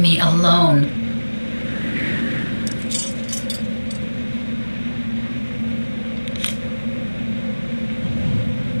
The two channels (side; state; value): both; inverted; correlation -1.00